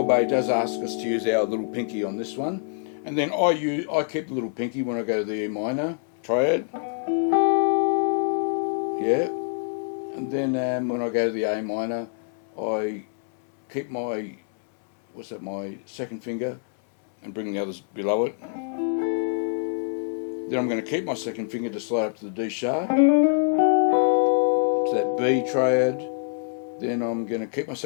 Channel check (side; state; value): right; silent; 62 dB below the other